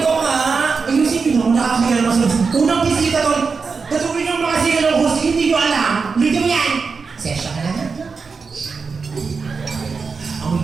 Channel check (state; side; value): quieter; left; 5.0 dB